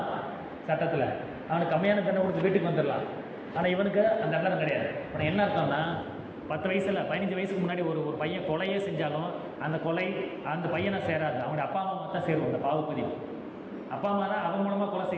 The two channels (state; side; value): identical; both; correlation 1.00